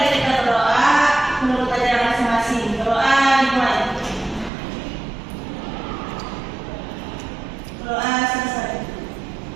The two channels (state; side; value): drops out; left; at 4.5 s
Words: kita berdoa menurut ajaran masing-masing. Berdoa dimulai. Berdoa selesai.